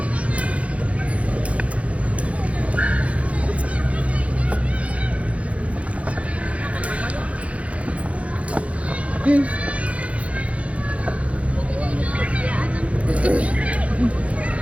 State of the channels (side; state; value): left; late; 0.064 ms